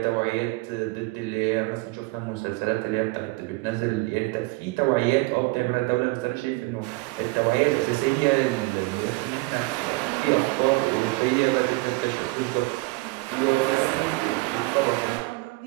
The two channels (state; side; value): quieter; left; 24.0 dB